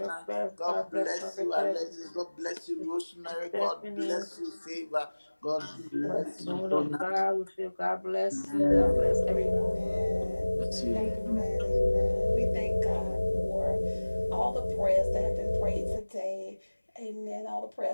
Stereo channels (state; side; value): inverted; both; correlation -1.00